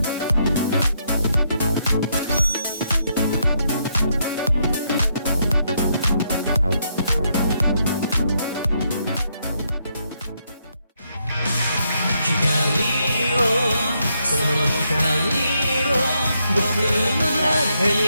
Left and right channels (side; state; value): both; inverted; correlation -0.77